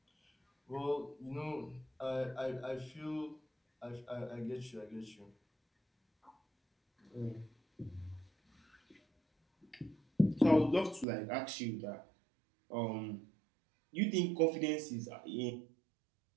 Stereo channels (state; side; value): drops out; left; at 11.1 s